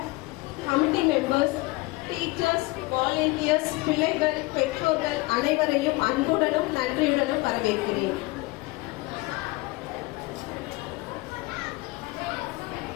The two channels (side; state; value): right; quieter; 22.6 dB